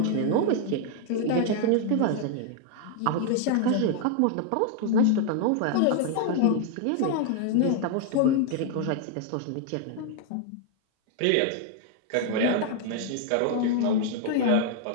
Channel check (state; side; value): different; both; correlation 0.00